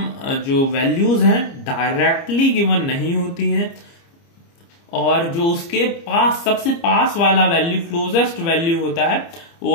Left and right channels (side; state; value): right; late; 30 ms